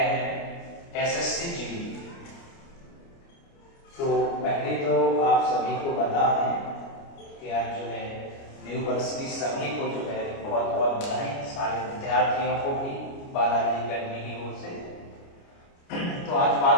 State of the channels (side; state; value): right; late; 29 ms